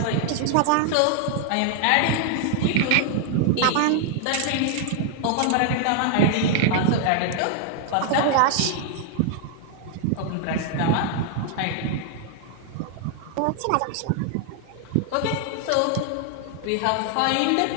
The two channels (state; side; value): different; both; correlation 0.00